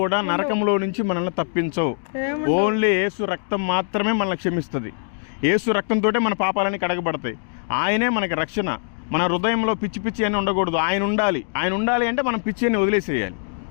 నరకంలో నుంచి మనల్ని తప్పించవు. ఓన్లీ యేసు రక్తం మాత్రమే మనల్ని క్షమిస్తుంది. యేసు రక్తంతో మన పాపాలన్నీ కడగబడతాయి. ఆయనే మనకి రక్షణ. మన హృదయంలో పిచ్చి అని ఉండకూడదు. ఆయన ఉండాలి అంటే మనం పిచ్చి అని వదిలేసేయాలి.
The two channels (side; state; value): right; silent; digital silence